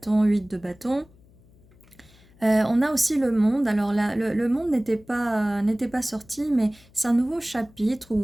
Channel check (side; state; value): left; noise; hum, 28 dB below the sound